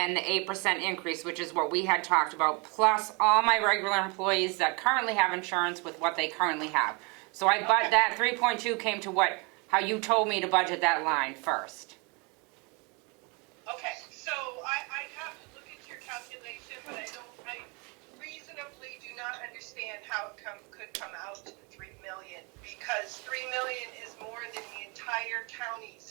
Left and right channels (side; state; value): left; quieter; 30.9 dB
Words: the 8% increase, which is what we had talked about, plus all my regular employees that currently have insurance with what they currently have. So that 3.2 came to how you told me to budget that line first. Okay, so I have to look at your calculation, but I reasonably do not understand how it could come out to 3 million, because 3 million is more than the entire